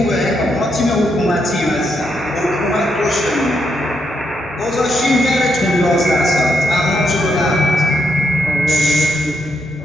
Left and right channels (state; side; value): normal; both; correlation 0.79